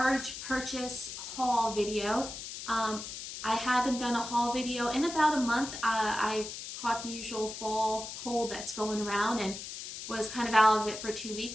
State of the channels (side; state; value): left; noise; hiss, 9 dB below the sound